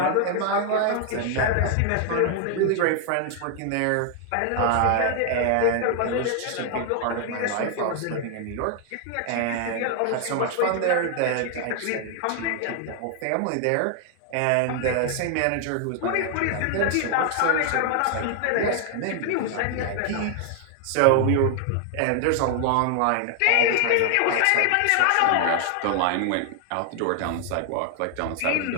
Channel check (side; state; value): both; different; correlation 0.00